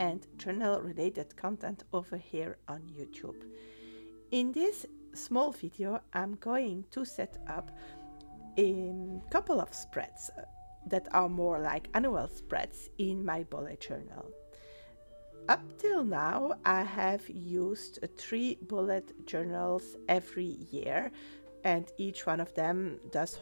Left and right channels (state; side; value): inverted; both; correlation -1.00